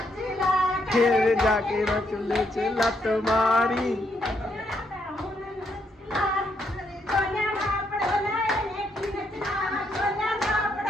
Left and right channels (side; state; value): both; normal; correlation 0.76